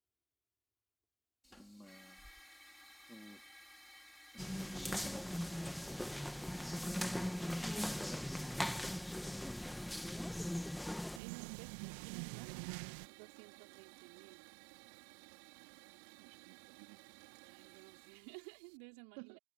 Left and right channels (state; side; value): drops out; left; at 11.2 s